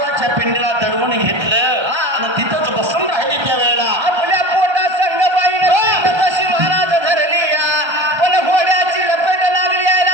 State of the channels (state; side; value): late; left; 1.3 ms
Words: पिंडीला दडवून घेतलं आणि तिथंच बसून राहिली त्या वेळेला आपल्या पोटा संगबाईने तशी महाराज धरली या पण घोड्याची लपेट लागली